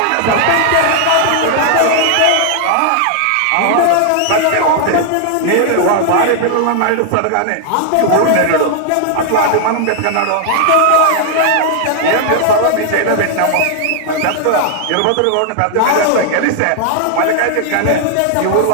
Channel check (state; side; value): different; both; correlation 0.00